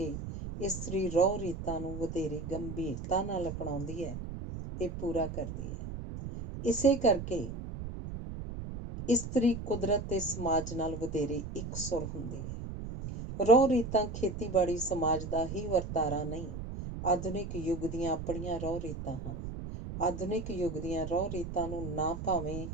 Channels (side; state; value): right; noise; rumble, 7 dB below the sound